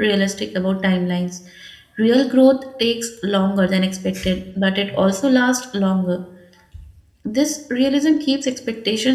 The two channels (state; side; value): identical; both; correlation 1.00